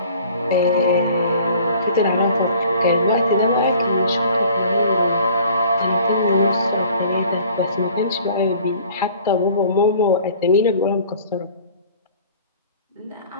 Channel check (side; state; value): both; inverted; correlation -0.50